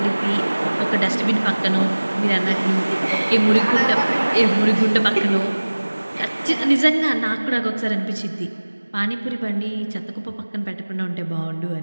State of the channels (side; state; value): both; inverted; correlation -1.00